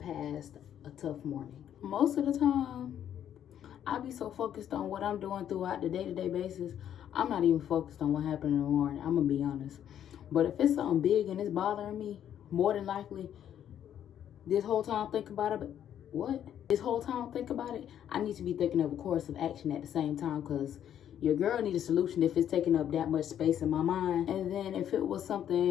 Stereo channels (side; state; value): right; quieter; 10.1 dB